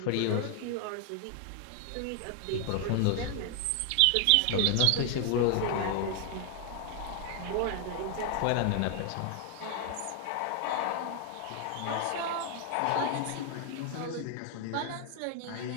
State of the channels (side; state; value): both; different; correlation 0.00